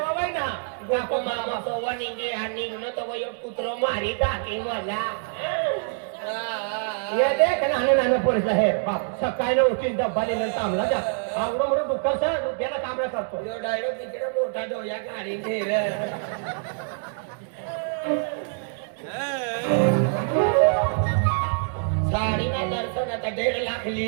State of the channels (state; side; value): silent; left; 61 dB below the other